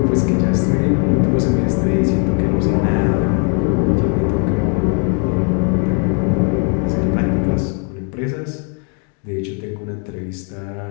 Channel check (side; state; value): right; quieter; 38.6 dB